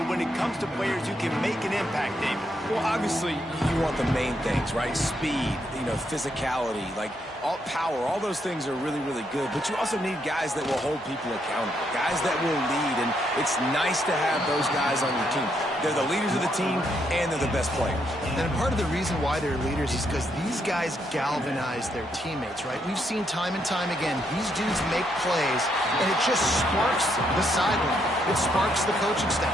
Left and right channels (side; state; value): both; normal; correlation 0.76